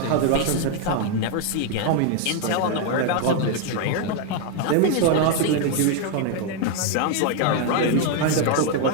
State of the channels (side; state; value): both; different; correlation 0.01